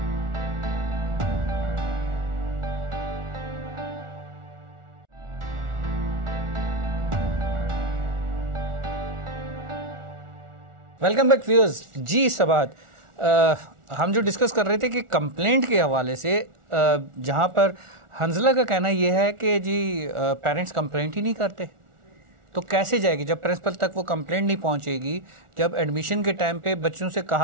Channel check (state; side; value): late; left; 1.4 ms